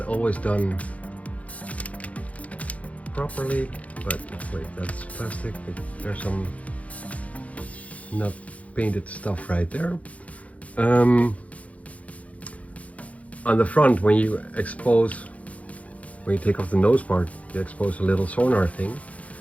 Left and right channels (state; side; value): late; right; 0.066 ms